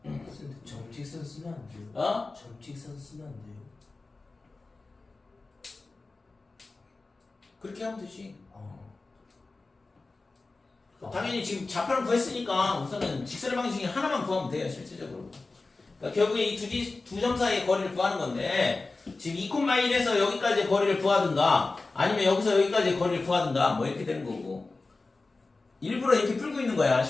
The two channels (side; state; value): right; quieter; 3.6 dB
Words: 근데 점직선 쓰면 안 돼요. 점직선 쓰면 안 돼요. 그렇게 하면 되지. 당연히 지금 좌표를 구했으니까 우선은 직선의 방식 중에 하나만 구하면 돼요, 실질적으로. 그러니까 결국에 이 두 점 사이의 거리를 구하는 건데 지금 2,1에서 여기까지의 거리를 구하든가 아니면 여기서 여기까지의 거리를 구하든가 뭐 이렇게 되는 거고 일부러 이렇게 풀고 있는 거야.